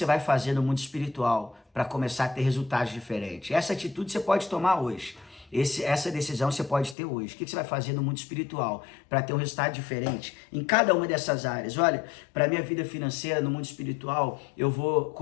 vai fazer no mundo espiritual para começar a ter resultados diferentes? Essa atitude você pode tomar hoje. Essa decisão você pode ter hoje. O que você vai fazer no mundo espiritual para ter um resultado diferente em cada uma dessas áreas? Olha, para a minha vida financeira no mundo espiritual, eu vou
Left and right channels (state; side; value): drops out; right; at 7.0 s